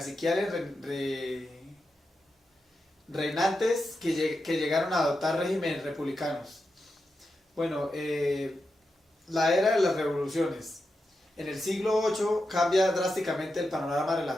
reinantes que llegaron a adoptar regímenes republicanos. Bueno, la era de las revoluciones. En el siglo VIII cambia drásticamente el panorama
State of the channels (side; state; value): both; normal; correlation 0.88